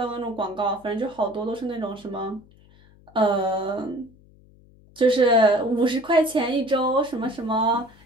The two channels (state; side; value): noise; left; hum, 27 dB below the sound